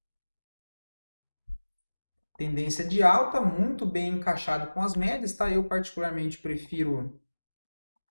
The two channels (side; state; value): both; inverted; correlation -1.00